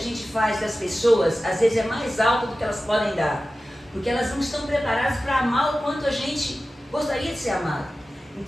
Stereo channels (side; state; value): both; normal; correlation 0.95